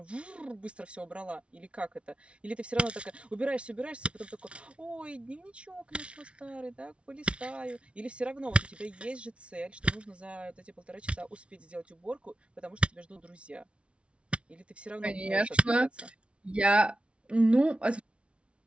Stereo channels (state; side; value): late; left; 0.060 ms